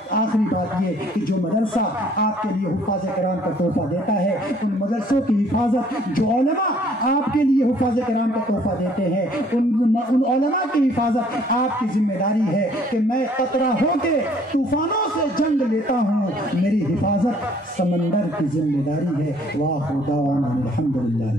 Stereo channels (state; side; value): normal; both; correlation 0.60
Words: آخری بات یہ کہ جو مدرسہ آپ کے لیے حفاظ کرام کا تحفہ دیتا ہے، ان مدرسوں کی حفاظت، جو علماء آپ کے لیے حفاظ کرام کا تحفہ دیتے ہیں، ان علماء کی حفاظت آپ کی ذمہ داری ہے کہ میں قطرہ ہو کے طوفانوں سے جنگ لیتا ہوں، میری حفاظت سمندر کی ذمہ داری ہے۔ وآخر دعوانا الحمدللہ